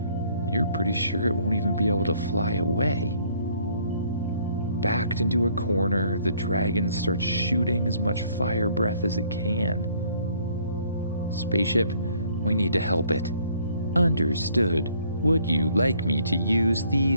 you're pretty sure it won't even be able to fly away. Backed into a corner, the dragon starts shooting as much fire breath as it can. "Spaceship, we need to help it." "Understood. Would you like me to use the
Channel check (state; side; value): inverted; both; correlation -0.62